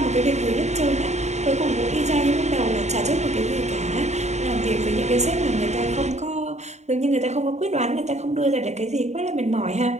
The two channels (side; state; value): left; late; 0.33 ms